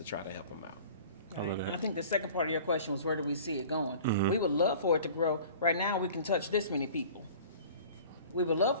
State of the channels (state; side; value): inverted; both; correlation -0.45